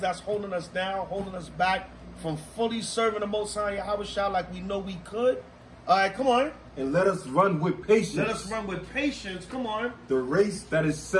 holding us down, holding us back from fully serving the Most High Yahweh like we know we could. All right, come on. And let us run with patience. Let us run with patience. Come on. The race that is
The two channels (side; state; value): both; identical; correlation 1.00